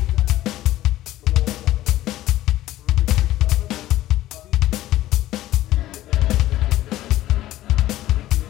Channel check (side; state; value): right; quieter; 14.9 dB